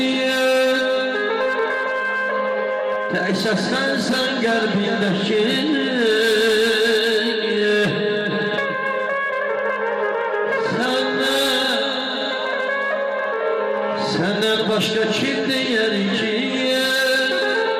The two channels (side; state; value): both; identical; correlation 1.00